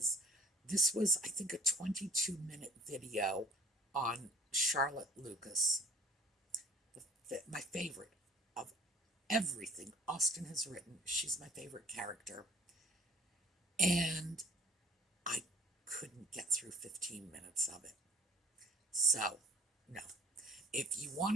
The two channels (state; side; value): normal; both; correlation 0.51